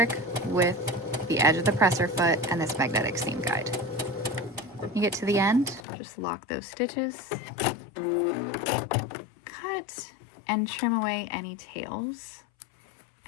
with the edge of the presser foot and this magnetic seam guide. When you get to the end, just lock those stitches, cut and trim away any tails,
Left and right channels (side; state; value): right; drops out; at 5.9 s